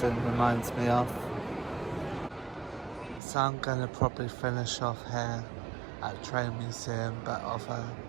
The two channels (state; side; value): drops out; left; at 3.2 s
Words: reminds me of. So I'm going to probably finish off here at Train Museum, but of a